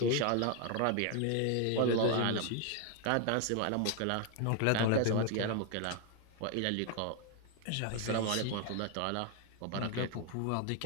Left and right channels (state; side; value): different; both; correlation 0.01